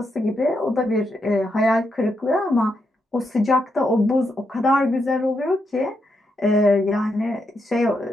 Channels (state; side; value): normal; both; correlation 0.81